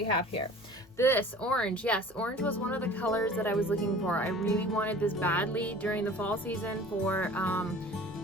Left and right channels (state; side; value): noise; left; hum, 28 dB below the sound